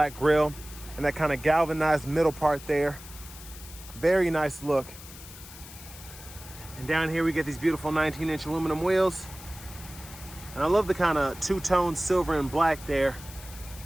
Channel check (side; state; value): left; noise; hiss, 16 dB below the sound